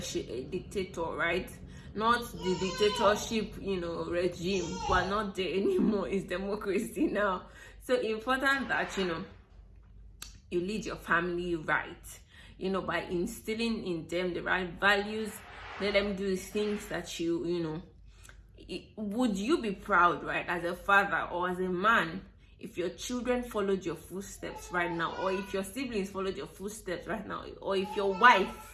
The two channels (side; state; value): both; identical; correlation 1.00